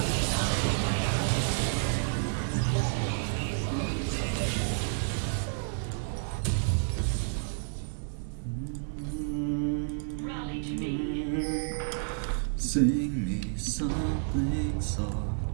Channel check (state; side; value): silent; left; digital silence